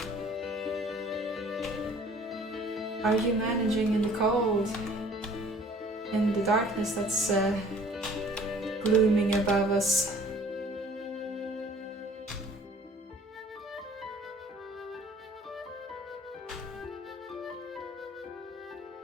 Are you managing in the cold? In the darkness that's glooming above us?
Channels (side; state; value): both; normal; correlation 0.53